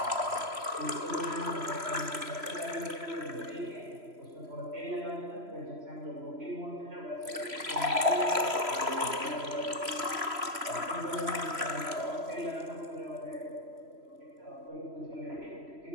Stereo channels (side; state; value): left; late; 3.0 ms